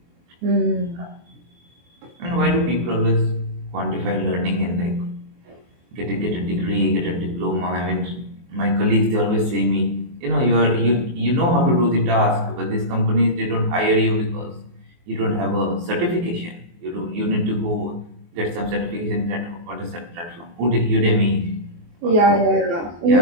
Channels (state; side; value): late; left; 23 ms